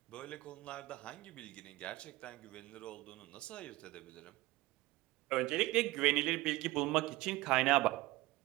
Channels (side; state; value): left; quieter; 19.4 dB